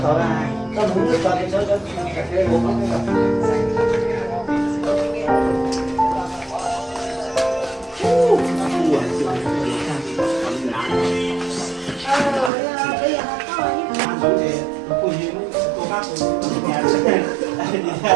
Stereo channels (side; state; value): left; drops out; at 12.5 s